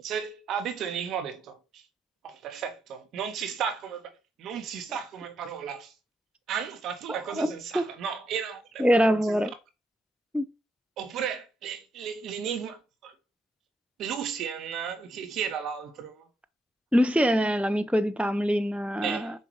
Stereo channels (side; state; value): both; normal; correlation 0.81